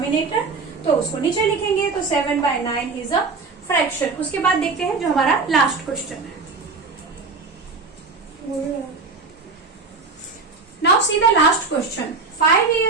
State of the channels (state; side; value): quieter; left; 4.3 dB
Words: तो उसको नीचे लिखेंगे, तो 7 बाय 9 इज अ फ्रैक्शन। उसके बाद देखते हैं जो हमारा लास्ट क्वेश्चन है। Now see the last question. 5